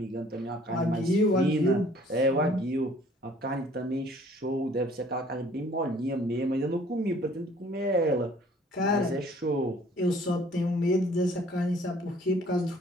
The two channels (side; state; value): both; normal; correlation 0.56